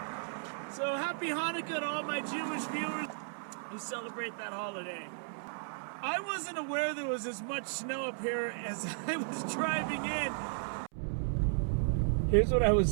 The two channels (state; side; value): silent; left; 55 dB below the other